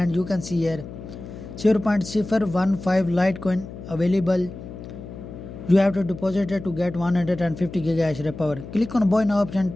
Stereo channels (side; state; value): left; noise; hum, 13 dB below the sound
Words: you can see here 0.015 Litecoin available. You have to deposit it to get 150 gigahash rate power. Click on buy now option